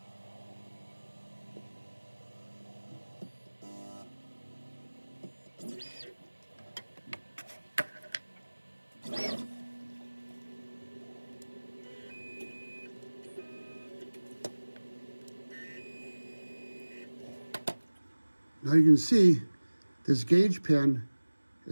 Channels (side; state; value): both; inverted; correlation -1.00